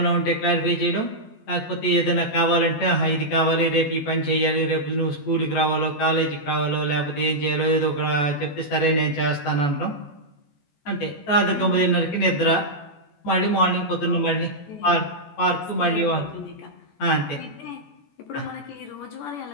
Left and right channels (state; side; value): late; right; 14 ms